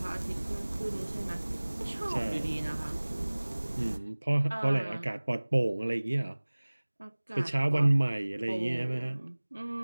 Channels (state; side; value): inverted; both; correlation -1.00